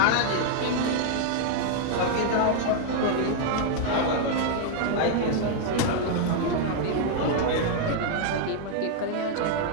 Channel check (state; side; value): different; both; correlation 0.00